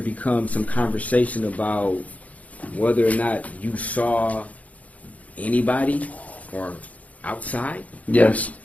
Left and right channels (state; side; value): late; right; 0.070 ms